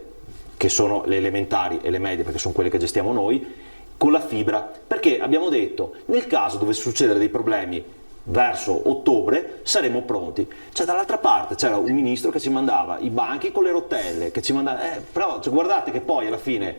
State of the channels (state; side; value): inverted; both; correlation -1.00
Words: che sono le elementari e le medie, perché sono quelle che gestiamo noi, con la fibra, perché abbiamo detto, nel caso dovesse succedere dei problemi verso ottobre, saremo pronti. Cioè, dall'altra parte c'era un ministro che ci mandava i banchi con le rotelle, che ci mandava, però cioè, guardate che poi alla fine,